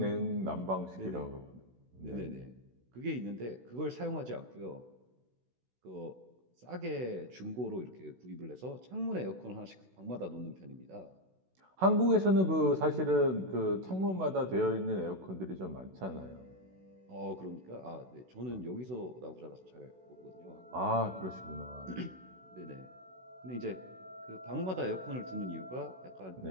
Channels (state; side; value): late; left; 16 ms